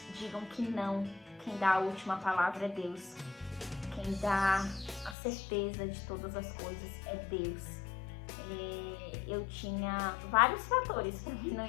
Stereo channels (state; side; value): drops out; right; at 5.2 s